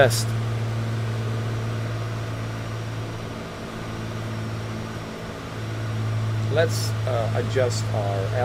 Let's adjust our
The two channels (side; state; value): both; identical; correlation 1.00